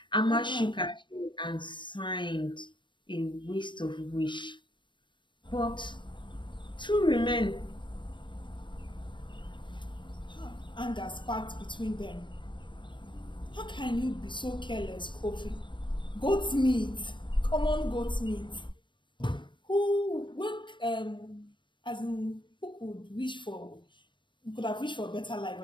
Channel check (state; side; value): late; right; 0.23 ms